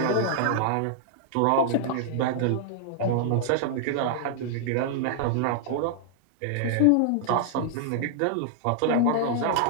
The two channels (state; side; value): different; both; correlation -0.01